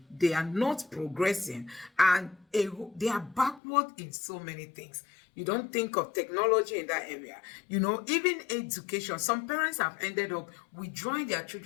They are not progressing, and they are backward in so many things. You don't think of technology in that area. Even education. Some parents have ended up withdrawing their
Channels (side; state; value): right; drops out; at 3.6 s